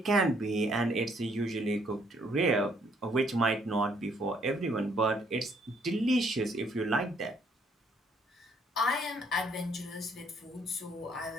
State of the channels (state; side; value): normal; both; correlation 0.67